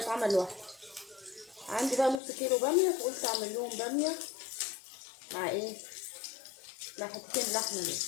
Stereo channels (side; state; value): right; drops out; at 2.2 s